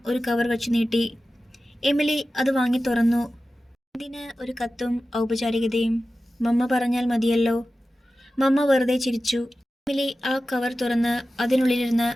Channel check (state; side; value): normal; both; correlation 0.94